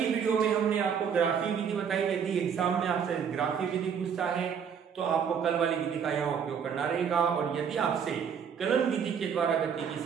वीडियो में हमने आपको ग्राफी विधि बताई, यदि एग्जाम में आपसे ग्राफी विधि पूछता है तो आपको कल वाली विधि का यहाँ उपयोग करना रहेगा, और यदि आपसे कलन विधि के द्वारा गति की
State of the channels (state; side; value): quieter; left; 7.3 dB